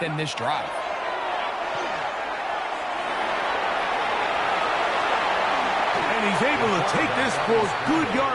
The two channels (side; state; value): both; identical; correlation 1.00